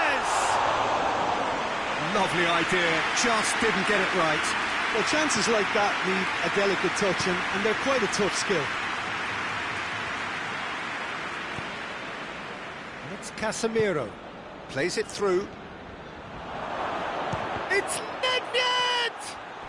Lovely idea, just didn't get it right. Well, chances like that need a delicate touch, and they're quite a tough skill. And it's Casemiro. Plays it through. It's Nedved!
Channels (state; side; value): identical; both; correlation 1.00